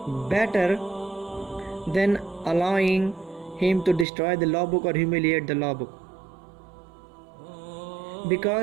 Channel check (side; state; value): left; drops out; at 4.0 s